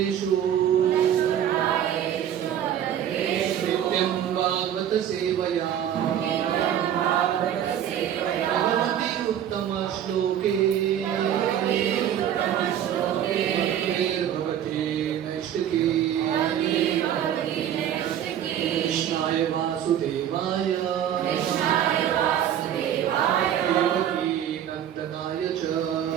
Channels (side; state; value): left; quieter; 10.1 dB